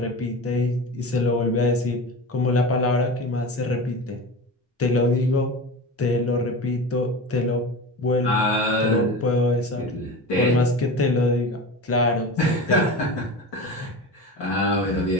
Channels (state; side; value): normal; both; correlation 0.29